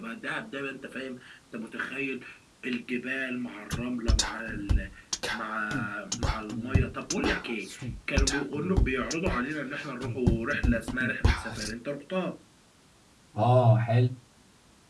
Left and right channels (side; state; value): both; identical; correlation 1.00